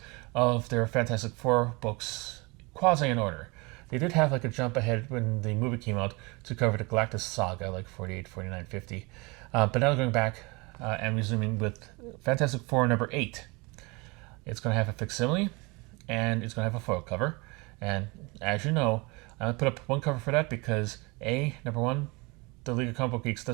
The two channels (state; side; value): quieter; left; 26.8 dB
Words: of their Fantastic Four books, quasi in order. They did have like a jump ahead when the movie came out to cover the Galactus saga, like 48, 49, 50. But now going back and resuming with Fantastic Four number 8. It's going to have a facsimile, and it's going to have a foil cover. And as you know, I'm going to put up one cover for that because number one, the League of Comic Book Geeks